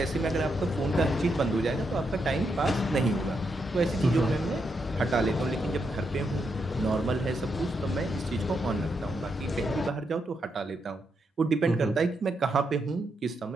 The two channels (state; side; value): normal; both; correlation 0.81